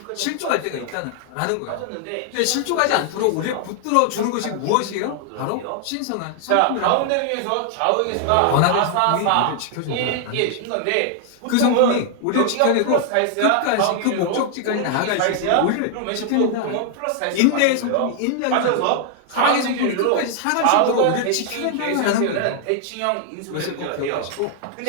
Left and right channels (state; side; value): different; both; correlation 0.00